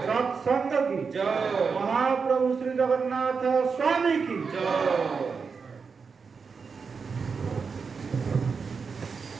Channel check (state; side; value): quieter; left; 5.4 dB